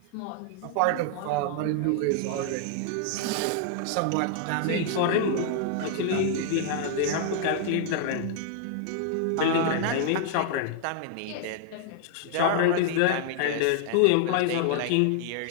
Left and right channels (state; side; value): different; both; correlation 0.00